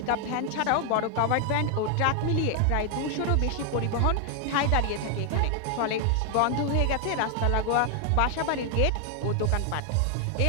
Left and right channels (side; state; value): both; different; correlation 0.00